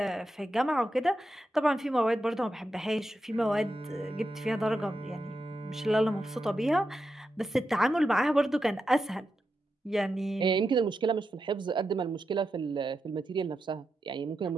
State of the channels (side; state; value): both; normal; correlation 0.88